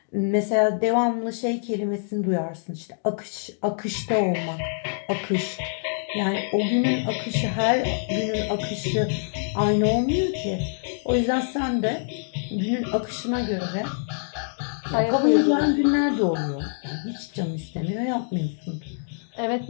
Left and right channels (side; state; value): right; silent; digital silence